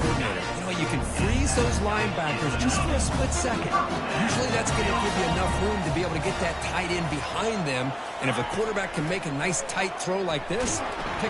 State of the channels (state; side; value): identical; both; correlation 1.00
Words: You know, you can freeze those linebackers just for a split second. Usually that's going to give you enough room to be able to get that tight end behind them. And if a quarterback can make a nice tight throw like this,